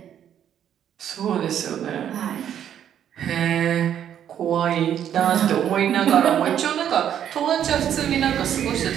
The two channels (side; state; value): left; quieter; 9.8 dB